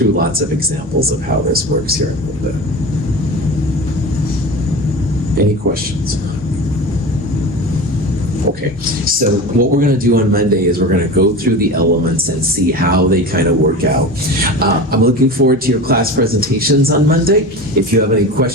lots of examples of how this works here in a little bit. Any questions? Okay, so what we're going to do on Monday is we're going to go through the elements and see how they kind of work out. I'm looking forward to your class presentations on Monday. If you have any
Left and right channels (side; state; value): both; normal; correlation 0.30